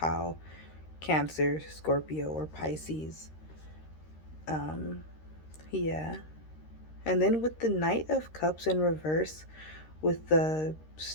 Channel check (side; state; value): right; late; 13 ms